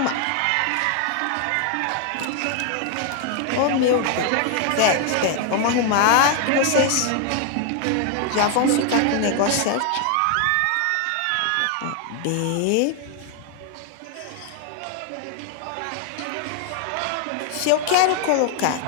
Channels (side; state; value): both; different; correlation 0.01